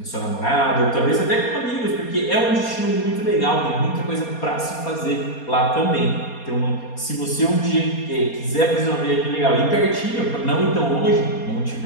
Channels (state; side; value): late; right; 4.3 ms